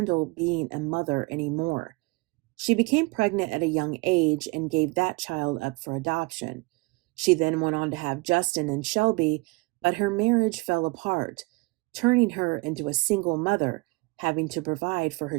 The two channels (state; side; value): quieter; left; 25.5 dB